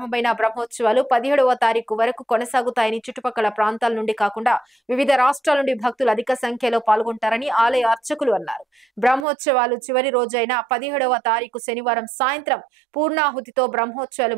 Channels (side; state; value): left; drops out; at 9.2 s